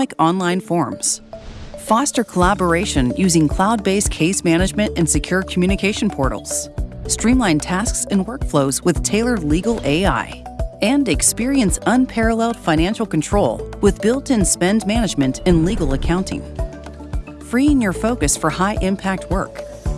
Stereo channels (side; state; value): both; identical; correlation 1.00